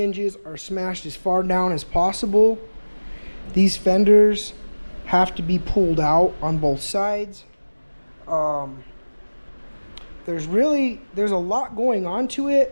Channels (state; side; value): inverted; both; correlation -1.00